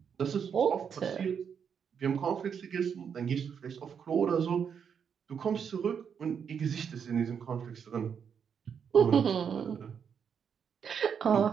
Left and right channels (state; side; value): quieter; left; 7.2 dB